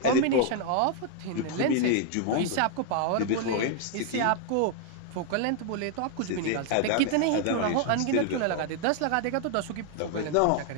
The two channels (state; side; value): different; both; correlation 0.00